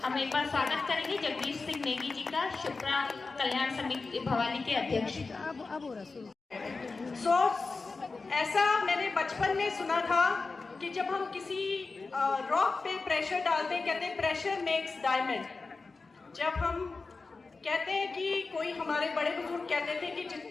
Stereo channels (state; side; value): quieter; right; 4.0 dB